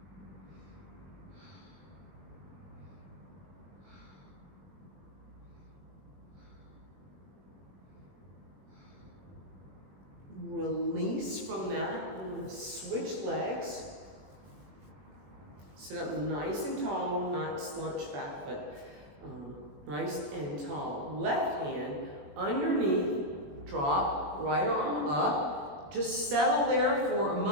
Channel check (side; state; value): left; late; 21 ms